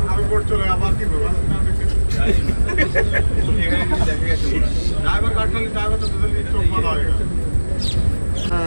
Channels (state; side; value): inverted; both; correlation -1.00